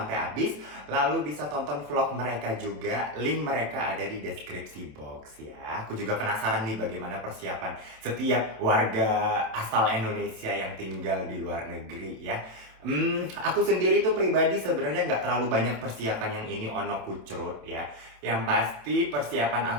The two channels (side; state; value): left; late; 27 ms